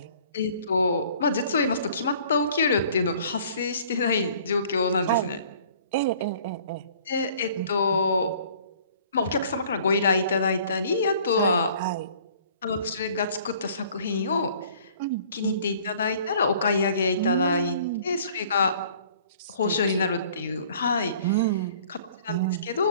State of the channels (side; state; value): both; inverted; correlation -0.54